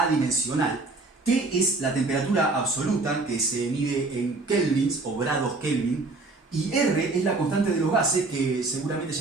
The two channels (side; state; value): left; quieter; 3.4 dB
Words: T es la temperatura absoluta que se mide en kelvins o grados Kelvin, y R es la constante de los gases que seguramente